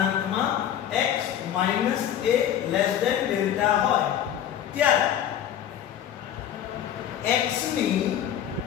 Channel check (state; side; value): quieter; right; 10.2 dB